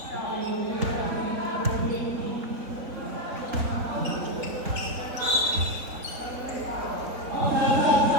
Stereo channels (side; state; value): left; late; 4.1 ms